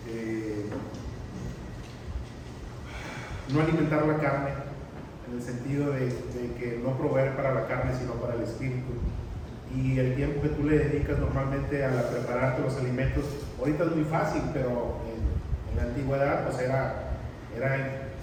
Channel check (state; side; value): identical; both; correlation 1.00